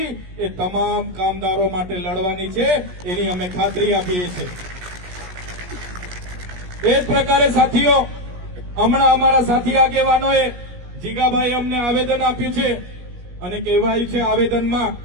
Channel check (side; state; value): left; late; 17 ms